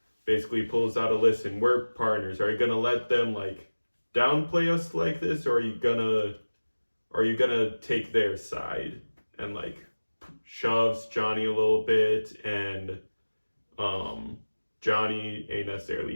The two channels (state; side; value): inverted; both; correlation -1.00